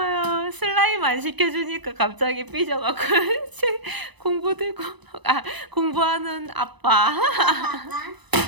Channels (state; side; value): late; left; 1.0 ms